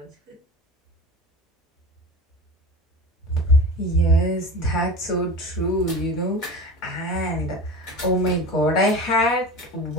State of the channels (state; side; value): normal; both; correlation 0.32